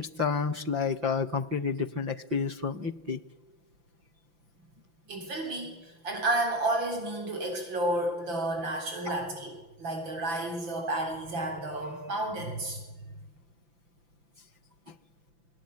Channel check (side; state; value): left; late; 5.9 ms